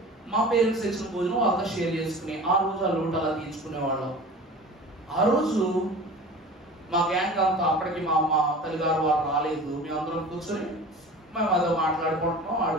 మా పేరెంట్స్ ఇచ్చిన భోజనం వాళ్ళతో షేర్ చేసుకుని ఆ రోజు ఆ లూట అలా తీర్చుకునేవాళ్ళం. ఆ రోజు మా గ్యాంగ్ అంతా, అప్పటికి మా తల్లిగారు వారు రాలేదు. మేమందరం కూర్చొని మేము అదో మాట్లాడుకుంటున్నాం,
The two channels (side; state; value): both; normal; correlation 0.38